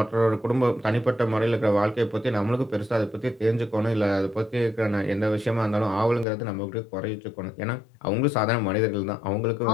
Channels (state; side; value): drops out; right; at 6.2 s